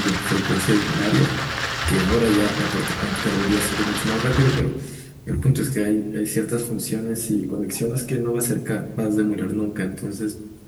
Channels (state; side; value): identical; both; correlation 1.00